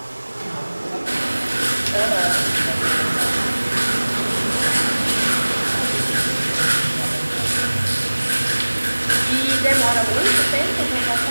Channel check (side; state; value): both; inverted; correlation -1.00